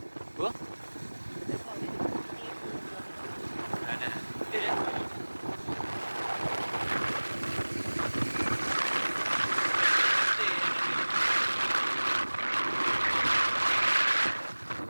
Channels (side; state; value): both; inverted; correlation -1.00